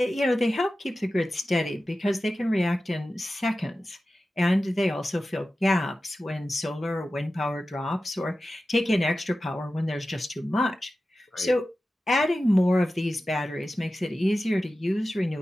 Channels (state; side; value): normal; both; correlation 0.94